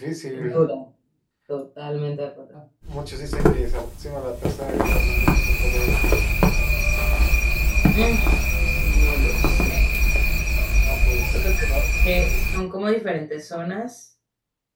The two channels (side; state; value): both; identical; correlation 1.00